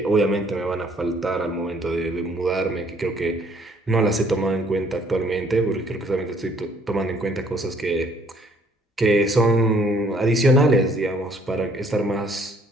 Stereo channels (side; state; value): both; normal; correlation 0.62